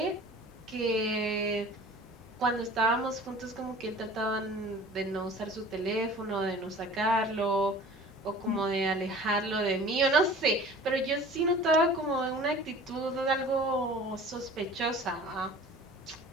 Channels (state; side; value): normal; both; correlation 0.44